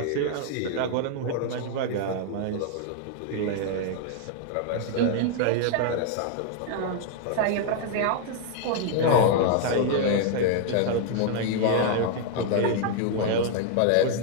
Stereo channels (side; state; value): both; different; correlation 0.00